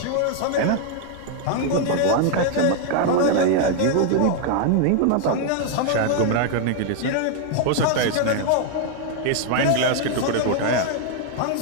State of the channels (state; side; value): different; both; correlation 0.00